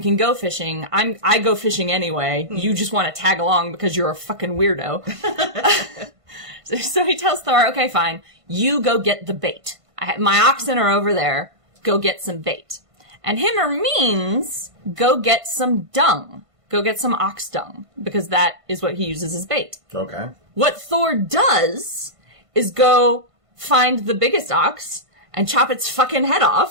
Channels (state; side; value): late; left; 1.5 ms